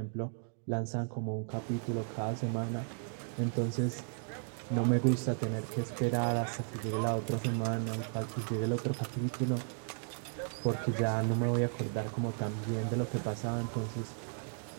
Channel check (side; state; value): left; silent; 55 dB below the other